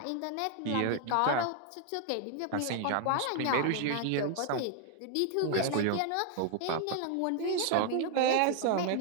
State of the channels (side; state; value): both; different; correlation 0.00